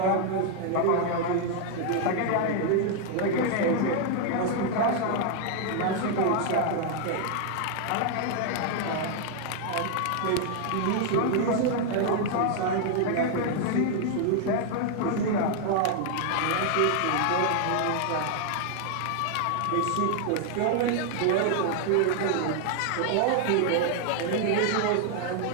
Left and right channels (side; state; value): both; different; correlation 0.00